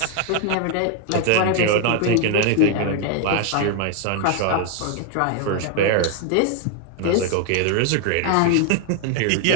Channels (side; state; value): both; different; correlation 0.00